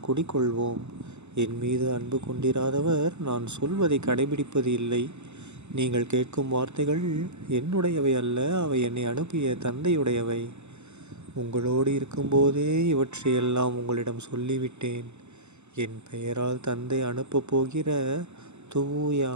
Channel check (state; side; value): late; left; 0.82 ms